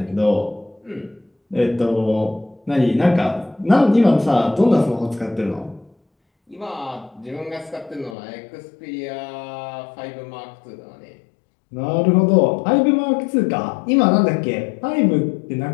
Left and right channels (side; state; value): right; drops out; at 8.2 s